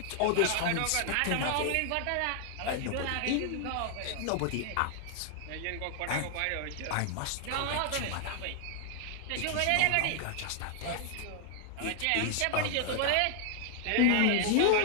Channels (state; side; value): different; both; correlation 0.00